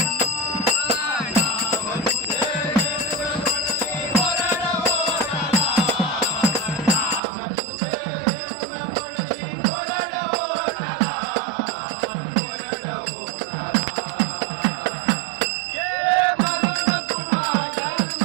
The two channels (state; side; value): drops out; left; at 7.2 s